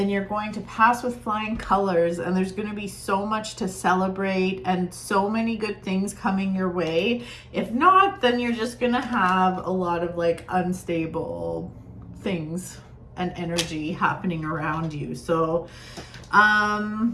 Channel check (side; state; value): both; identical; correlation 1.00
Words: you're going to pass with flying colors, and there's going to be so much to celebrate and so many good things coming your way. If not, then you're just going to have a lot of like unstable things and energy happening around you. So,